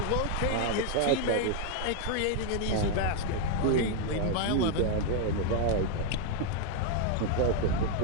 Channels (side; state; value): both; different; correlation 0.00